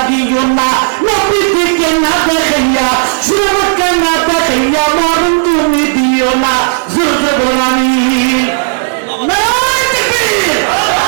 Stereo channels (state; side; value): silent; left; digital silence